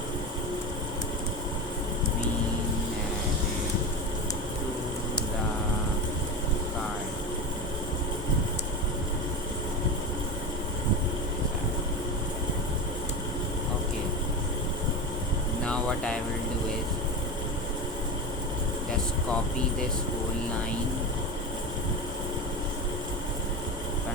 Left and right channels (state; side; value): normal; both; correlation 0.22